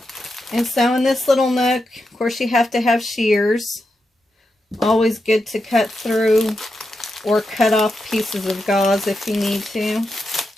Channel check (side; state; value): both; normal; correlation 0.87